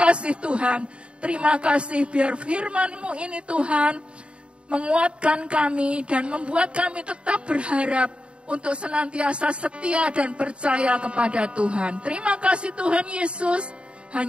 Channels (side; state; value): left; late; 0.057 ms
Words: Tuhan. Terima kasih, biar firman-Mu ini, Tuhan, menguatkan kami dan membuat kami tetap berharap untuk senantiasa setia dan percaya kepada Tuhan. Terima kasih, Tuhan Yesus.